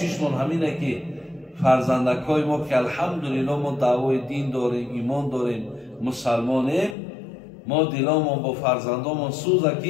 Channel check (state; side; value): drops out; right; at 7.0 s